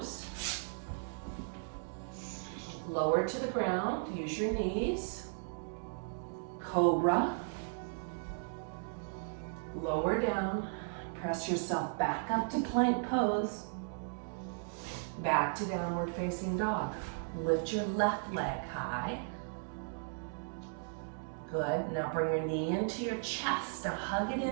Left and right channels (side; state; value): left; silent; digital silence